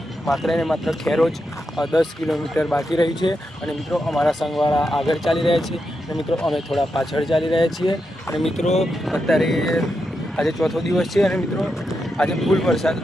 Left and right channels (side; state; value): both; normal; correlation 0.86